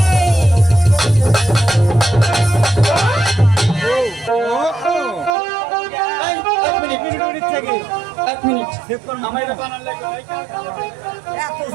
এই, এক মিনিট আমার এটা বানান লাগবে।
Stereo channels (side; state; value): left; drops out; at 5.4 s